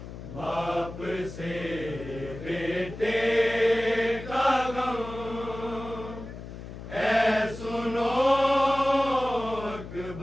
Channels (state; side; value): noise; left; hum, 12 dB below the sound